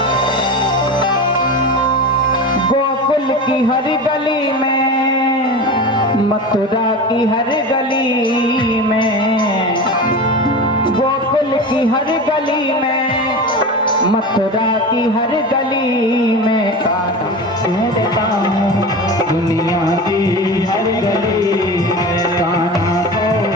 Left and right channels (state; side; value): normal; both; correlation 0.29